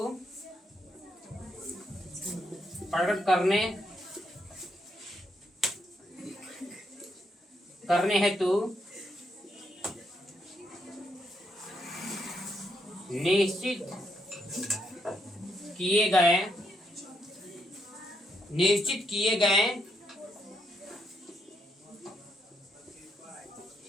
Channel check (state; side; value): normal; both; correlation 0.77